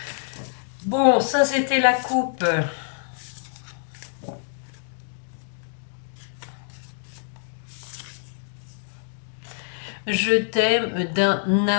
Bon, ça c'était la coupe. Je t'aime d'un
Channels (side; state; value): right; silent; digital silence